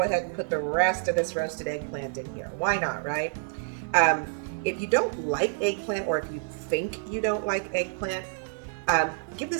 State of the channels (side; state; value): left; silent; digital silence